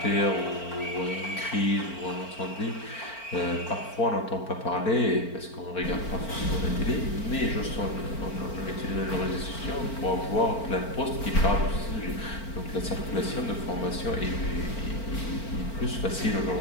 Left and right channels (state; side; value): late; right; 4.4 ms